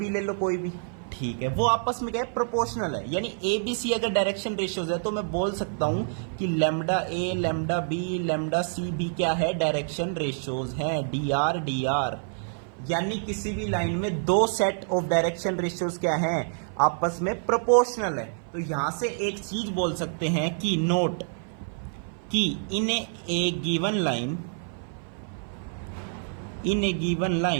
ले लो कोई भी, ठीक है, वो आपस में क्या है, प्रोपोर्शनल है। यानी ए बी सी अगर डायरेक्शन रेशियोज है तो मैं बोल सकता हूं कि लैम्डा ए, लैम्डा बी, लैम्डा सी भी क्या है, डायरेक्शन रेशियोज हैं, डी आर डी आर। यानी किसी भी लाइन में 2 सेट ऑफ डायरेक्शन रेशियोज क्या हैं, आपस में प्रोपोर्शनल है। तो यहां से एक चीज बोल सकते हैं कि नोट कि in a given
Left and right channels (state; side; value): silent; left; 56 dB below the other